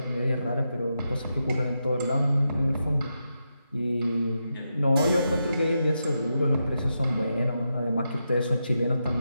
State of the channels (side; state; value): both; inverted; correlation -0.86